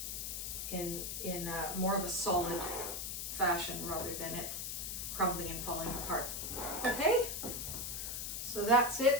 in more of a solid fashion rather than it crumbling and falling apart. Okay, so that's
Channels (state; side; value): noise; left; hiss, 4 dB below the sound